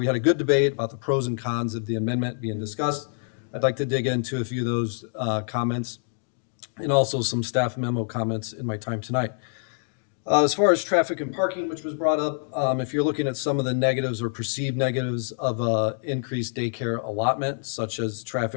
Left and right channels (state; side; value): silent; right; digital silence